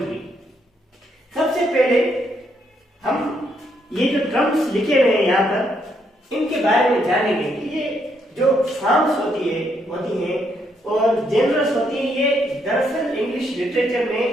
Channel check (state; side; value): normal; both; correlation 0.74